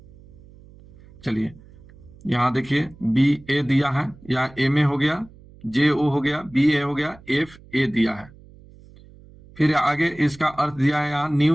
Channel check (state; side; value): noise; right; hum, 23 dB below the sound